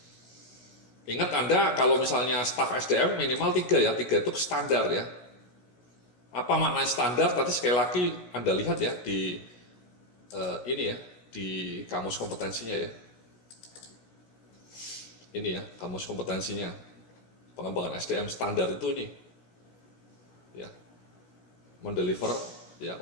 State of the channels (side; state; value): right; late; 17 ms